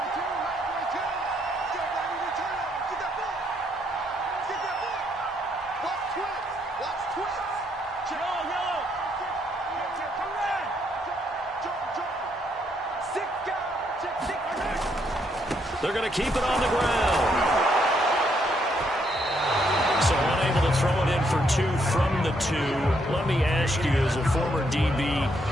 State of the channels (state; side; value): normal; both; correlation 0.73